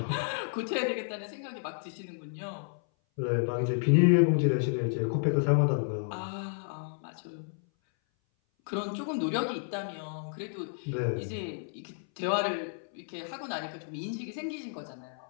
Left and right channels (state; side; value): silent; right; 57 dB below the other